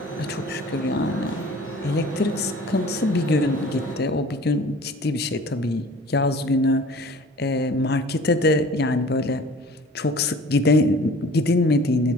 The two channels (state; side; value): normal; both; correlation 0.46